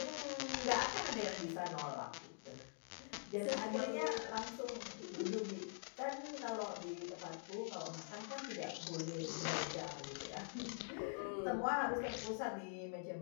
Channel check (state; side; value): silent; right; digital silence